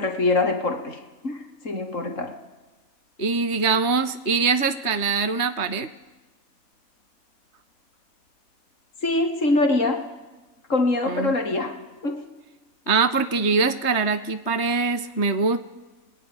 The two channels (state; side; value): late; right; 3.3 ms